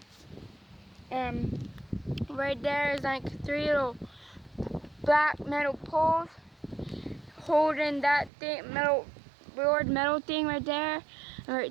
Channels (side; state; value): left; drops out; at 8.3 s